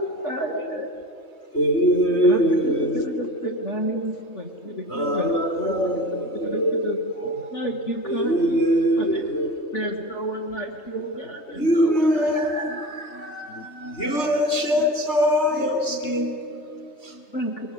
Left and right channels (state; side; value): late; right; 3.3 ms